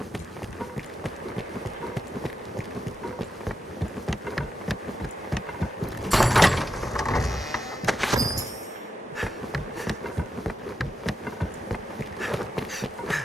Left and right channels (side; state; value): both; normal; correlation 0.85